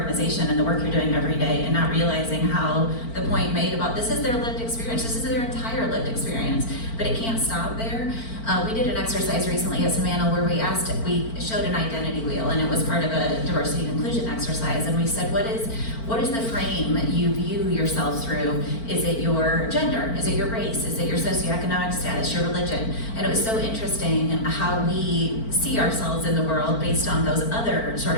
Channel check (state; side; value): late; right; 4.4 ms